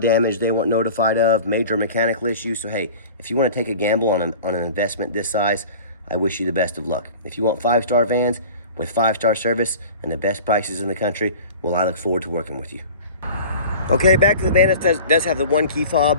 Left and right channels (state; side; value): inverted; both; correlation -0.39